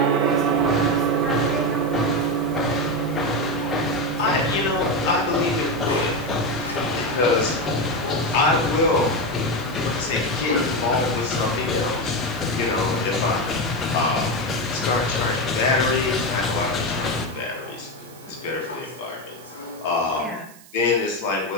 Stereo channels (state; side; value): noise; right; hiss, 22 dB below the sound